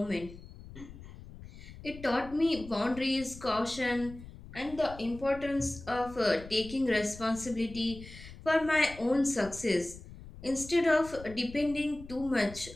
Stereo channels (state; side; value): noise; left; rumble, 16 dB below the sound